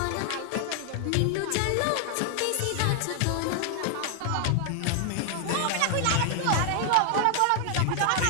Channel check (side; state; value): both; different; correlation 0.00